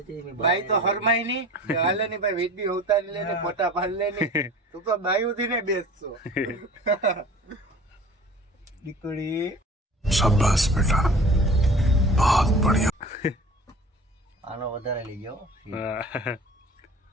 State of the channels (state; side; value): normal; both; correlation 0.42